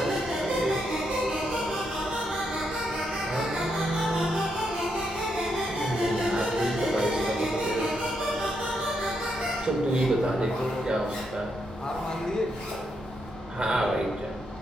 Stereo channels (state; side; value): normal; both; correlation 0.80